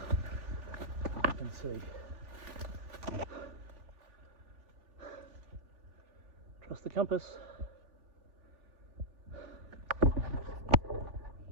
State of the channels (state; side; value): late; left; 3.4 ms